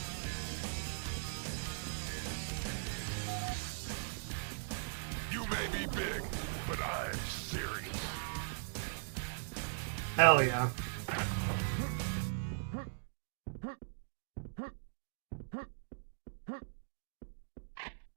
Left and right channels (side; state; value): left; silent; digital silence